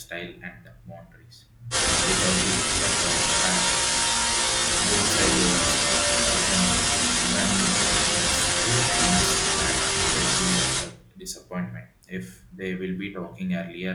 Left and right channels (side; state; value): both; identical; correlation 1.00